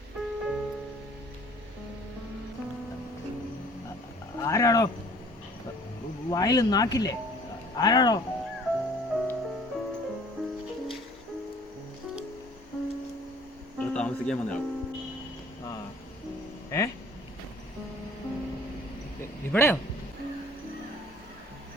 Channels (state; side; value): normal; both; correlation 0.53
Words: ആരാടോ? വായിൽ നാക്കില്ലേ? ആരാടോ? താമസിക്കാൻ വന്നയാൾ. ഇവിടെയോ?